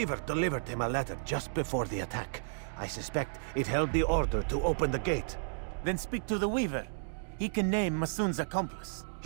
delivered him a letter just before the attack. I suspect it held the order to open the gate. Then speak to the weaver. He can name Masoon's accomplice.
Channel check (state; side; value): silent; left; digital silence